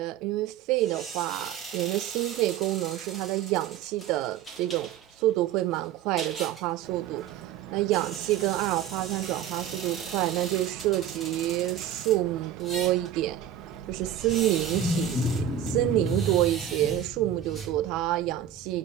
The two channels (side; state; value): left; quieter; 10.5 dB